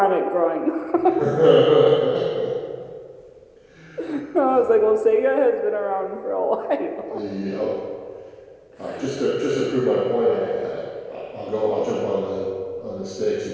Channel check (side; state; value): both; identical; correlation 1.00